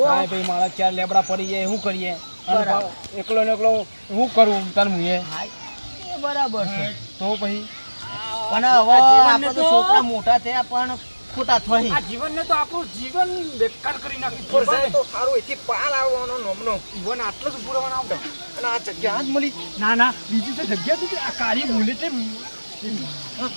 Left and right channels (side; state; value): both; inverted; correlation -1.00